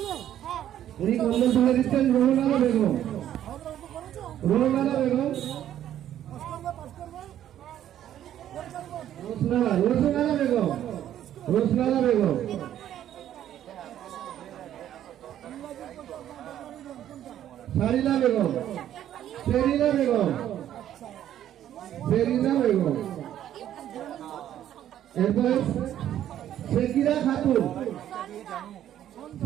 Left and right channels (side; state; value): left; quieter; 11.3 dB